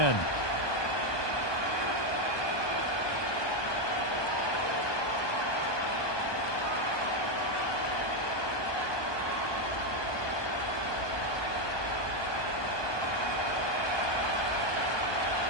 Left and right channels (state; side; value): late; right; 1.2 ms